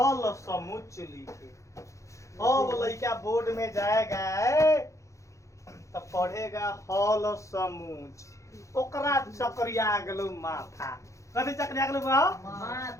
समुच्च लिखे। अब लड़का बोर्ड में जाएगा तो पढ़ेगा हल समुच्च, ओकरा चक्रिया गेलो माथा। कथी चक्रिया गेलो बा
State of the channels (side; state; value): right; late; 0.15 ms